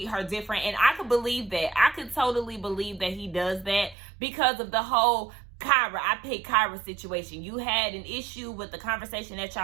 her different. And I could believe that. I could totally believe that he does that because of the whole Kyra, I picked Kyra situation. You had an issue with the conversation that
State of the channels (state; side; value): drops out; left; at 4.0 s